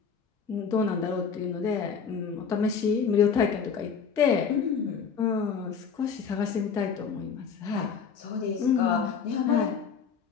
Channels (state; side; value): quieter; right; 6.3 dB